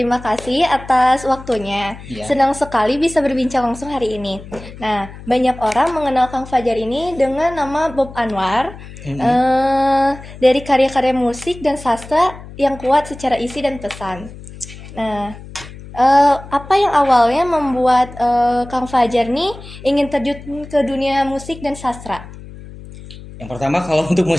kasih atas waktunya. iya. Senang sekali bisa berbincang langsung hari ini. Nah, banyak orang mengenal Kang Fajar ini dengan nama Bob Anwar, Mm-mm. eh, dari karya-karya musik dan sastra yang kuat secara isi dan pesan. Nah, apa yang awalnya membuat Kang Fajar nih ingin terjun ke dunia musik dan sastra? Yang pertama kalau untuk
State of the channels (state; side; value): noise; left; hum, 16 dB below the sound